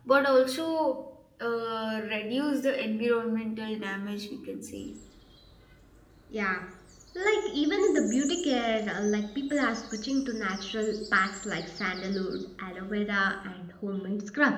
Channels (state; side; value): identical; both; correlation 1.00